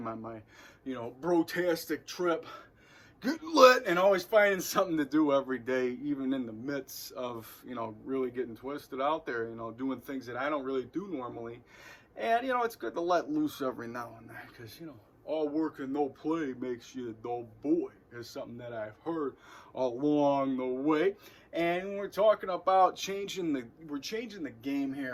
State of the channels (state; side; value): identical; both; correlation 1.00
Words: on my brotastic trip. Get lit and always finding something to do every day, even in the midst of, really getting twisted out there, doing things that I don't really do normally. And, it's good to let loose every now and then, because, all work and no play makes you a dull boy. Is something that I've heard along the way. And we're talking about changing the game